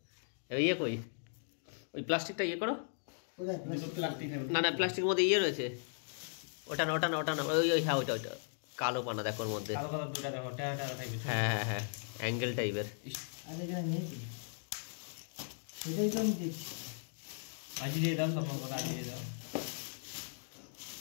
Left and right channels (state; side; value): silent; right; digital silence